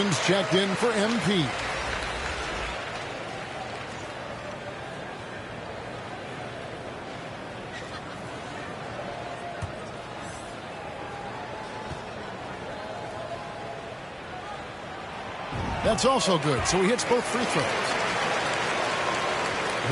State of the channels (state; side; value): identical; both; correlation 1.00